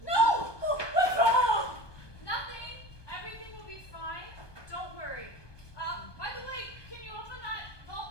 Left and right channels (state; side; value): late; right; 1.2 ms